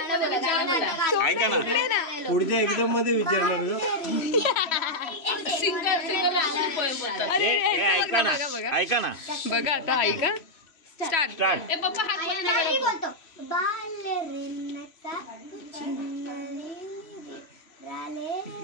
पुढच्या एक्झाम मध्ये विचारणार ऐका ना बघा आता ऐका स्टार्ट बोलतो बालरिनचा राले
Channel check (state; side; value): late; right; 3.0 ms